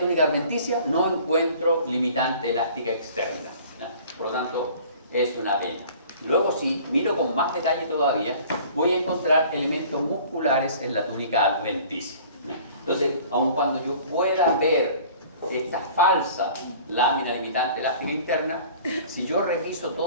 adventicia, no encuentro limitante elástica externa. Por lo tanto, es una vena. Luego, si miro con más detalle todavía, voy a encontrar elementos musculares en la túnica adventicia. Entonces, aun cuando yo pueda ver esta falsa lámina limitante elástica interna, si yo reviso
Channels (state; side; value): inverted; both; correlation -0.48